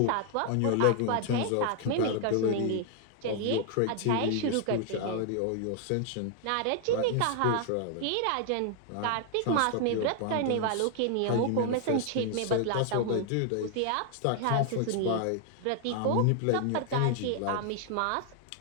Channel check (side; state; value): both; different; correlation 0.00